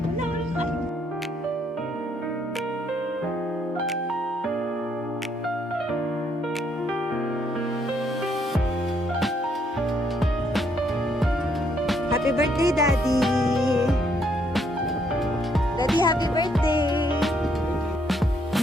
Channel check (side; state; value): both; normal; correlation 0.71